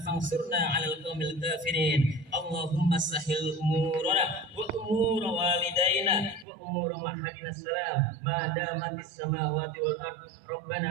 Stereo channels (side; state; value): left; drops out; at 6.5 s